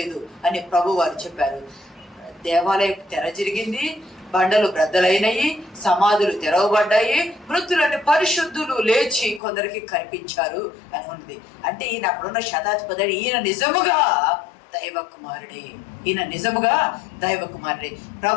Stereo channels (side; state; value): right; drops out; at 9.4 s